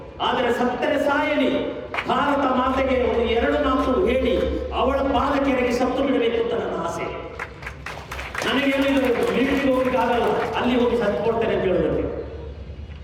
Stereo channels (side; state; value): both; identical; correlation 1.00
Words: ಆದರೆ ಸತ್ತರೆ ಸಾಯಲಿ, ಭಾರತ ಮಾತೆಗೆ ಒಂದು 2 ಮಾತು ಹೇಳಿ ಅವಳ ಪಾದಕೆರೆಗೆ ಸತ್ತು ಬಿಡಬೇಕು ಅಂತ ನನ್ನ ಆಸೆ. ನನಗೆ ಮಿಲಿಟರಿಗೆ ಹೋಗ್ಲಿಕ್ಕೆ ಆಗಲ್ಲ, ಅಲ್ಲಿ ಹೋಗಿ ಸತ್ತು ಕೊಡ್ತೇನೆ ಅಂತ ಹೇಳೋದಕ್ಕೆ.